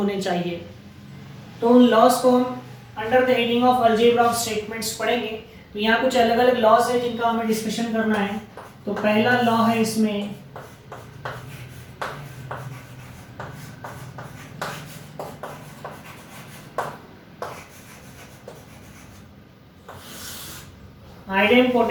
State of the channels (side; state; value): both; identical; correlation 1.00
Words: चाहिए। तो उन लॉज को हम under the heading of algebra of statements पढ़ेंगे। तो यहाँ कुछ अलग अलग लॉज है जिनका हमें डिस्कशन करना है। तो पहला लॉ है इसमें